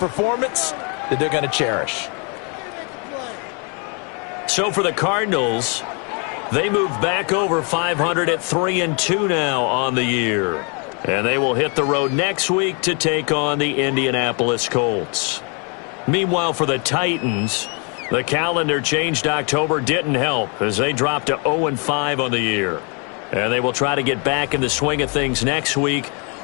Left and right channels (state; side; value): quieter; right; 35.9 dB